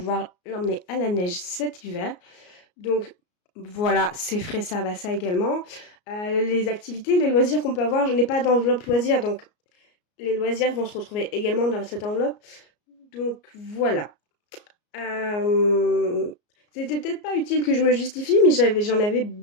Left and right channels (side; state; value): right; late; 34 ms